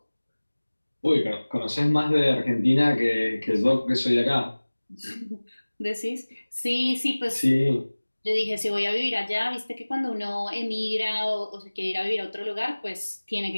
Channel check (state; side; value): inverted; both; correlation -1.00